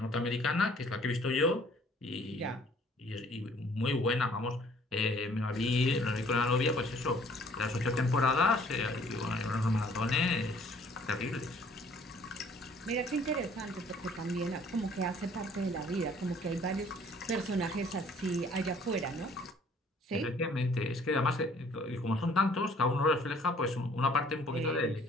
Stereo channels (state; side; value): normal; both; correlation 0.57